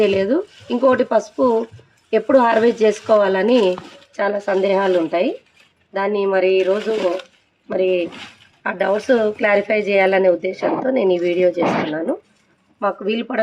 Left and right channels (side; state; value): both; identical; correlation 1.00